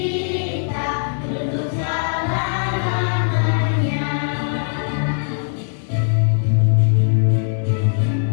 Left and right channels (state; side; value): silent; right; digital silence